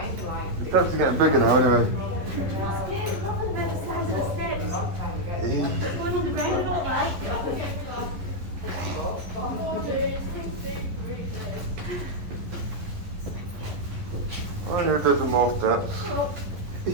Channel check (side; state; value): left; late; 11 ms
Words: The steps are getting bigger now, anyway. I'm scared. Look at the size of the steps. It's going on the ground, all right? I need a dozen more steps.